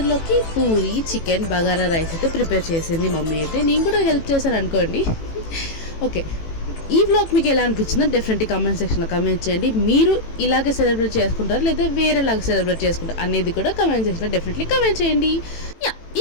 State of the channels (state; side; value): late; right; 18 ms